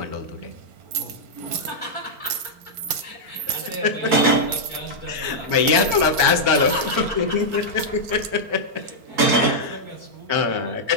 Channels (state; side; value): late; left; 4.4 ms